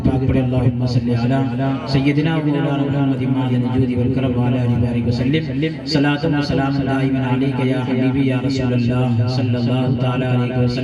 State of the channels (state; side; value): identical; both; correlation 1.00